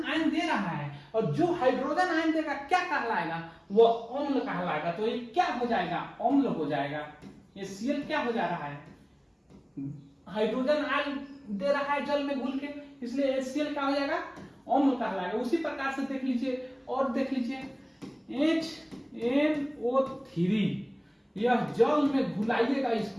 आयन दे रहा है, और जो हाइड्रोजन आयन देगा क्या कहलाएगा? वो अम्ल कहलाएगा। तो ये क्या हो जाएगा? अम्ल हो जाएगा। ये Cl क्या हो जा रहा है? हाइड्रोजन आयन दे रहा है जल में घुल के, इसलिए HCl क्या हो जाएगा? अम्ल कहलाएगा। उसी प्रकार से देख लीजिए, और देख लीजिए HNO3, यह जल में घुलाइएगा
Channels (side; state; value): both; identical; correlation 1.00